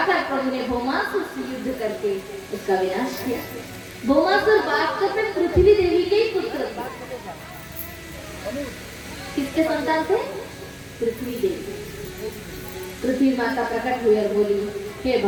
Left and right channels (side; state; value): both; identical; correlation 1.00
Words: प्रभु ने भौमासुर से युद्ध करके उसका विनाश किया। भौमासुर वास्तव में पृथ्वी देवी के ही पुत्र था। किसके संतान थे? पृथ्वी देवी। पृथ्वी माता प्रकट हुई और बोली, हे